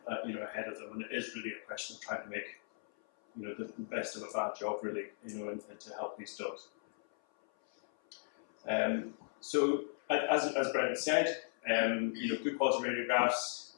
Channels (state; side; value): silent; right; 53 dB below the other